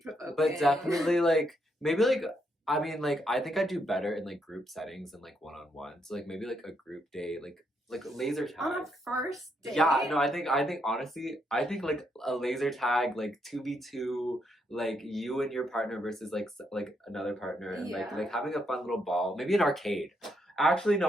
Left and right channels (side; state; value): both; normal; correlation 0.77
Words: provoking. But definitely like maybe like I mean like I think I do better in like group settings and like one-on-one. So like maybe like a group date, like laser tag. On a first date? Yeah, no, I think honestly, I think like a laser tag, like 2v2, like you and your partner versus like another partner, and like having a fun little ball, maybe an arcade. Actually,